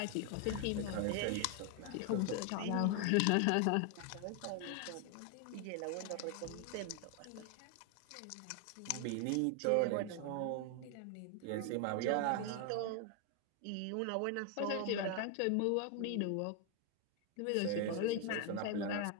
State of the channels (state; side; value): different; both; correlation 0.01